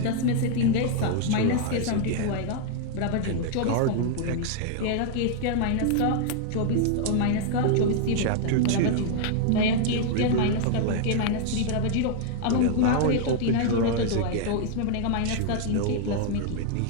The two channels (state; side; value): different; both; correlation -0.01